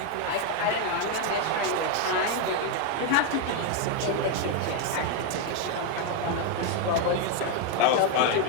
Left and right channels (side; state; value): both; different; correlation 0.01